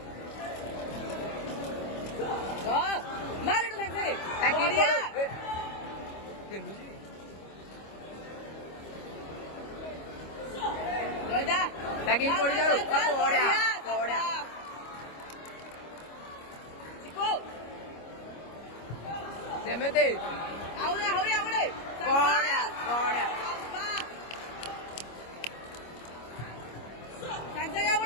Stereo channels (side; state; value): right; late; 25 ms